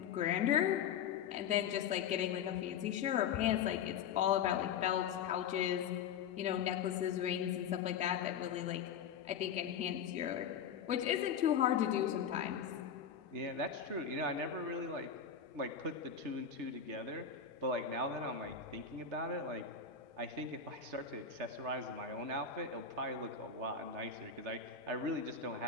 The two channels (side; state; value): right; quieter; 7.4 dB